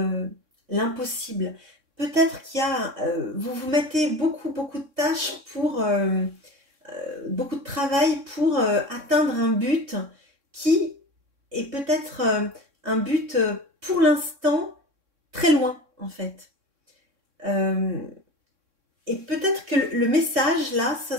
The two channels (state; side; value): late; left; 3.6 ms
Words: l'impossible. Peut-être qu'il y a... vous vous mettez beaucoup de tâches pour... beaucoup de travail pour atteindre un but qui est peut-être un but pour l'instant très loin en fait. Et peut-être que le message là, ça